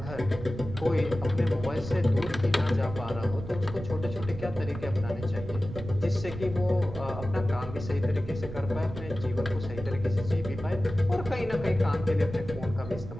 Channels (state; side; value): noise; right; rumble, 10 dB below the sound